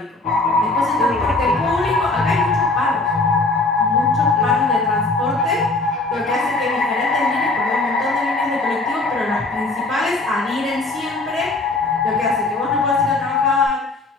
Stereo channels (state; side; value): quieter; right; 3.2 dB